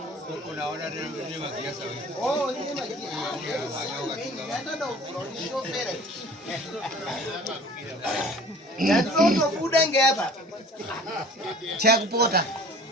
Unaona ni magiasa wewe. Oh, ni magiasa. Hata ndo shofera. Ndio kuda ngapa. Cha kupota.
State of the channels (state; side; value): normal; both; correlation 0.47